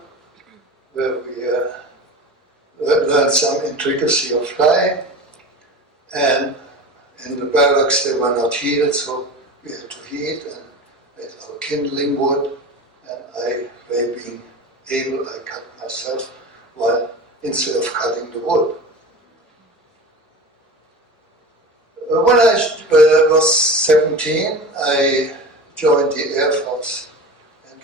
where we learned some intricacy of flying. And in the barracks they were not heated, so we had to heat and made our kindling wood. And I, by being able, I cut myself while instead of cutting the wood. When I was 17, I joined the Air Force. And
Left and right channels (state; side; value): normal; both; correlation 0.32